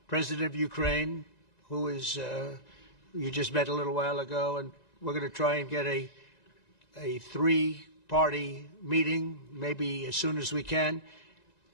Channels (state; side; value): late; right; 1.9 ms